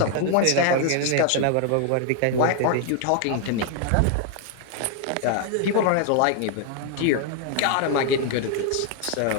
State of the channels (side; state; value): both; different; correlation 0.00